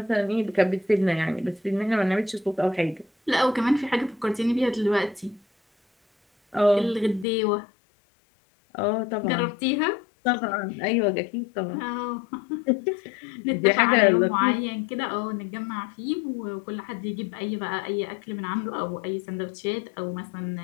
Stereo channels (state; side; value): drops out; right; at 7.2 s